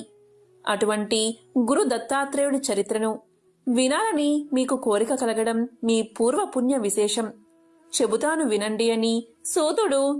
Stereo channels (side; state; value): both; identical; correlation 1.00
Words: అటువంటి గురు దత్తాత్రేయుడి చరిత్రను వినాలని మీకు కోరిక కలగడం మీ పూర్వ పుణ్య విశేషం. చెబుతాను వినండి అని సూతుడు